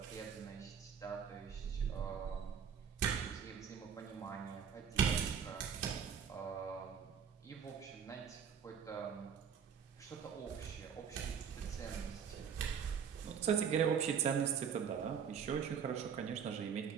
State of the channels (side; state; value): left; quieter; 7.4 dB